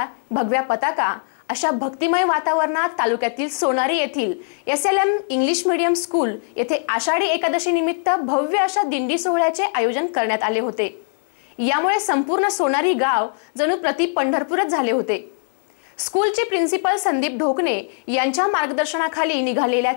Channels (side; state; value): right; silent; 61 dB below the other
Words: भगव्या पताका, अशा भक्तिमय वातावरणात तालुक्यातील सोनारी येथील SLM इंग्लिश मीडियम स्कूल येथे आषाढी एकादशी निमित्त भव्य अशा दिंडी सोहळ्याचे आयोजन करण्यात आले होते। यामुळे संपूर्ण सोनारी गाव जणू प्रति पंढरपूरच झाले होते। स्कूलचे प्रिन्सिपल संदीप ढोकणे यांच्या मार्गदर्शनाखाली निघालेल्या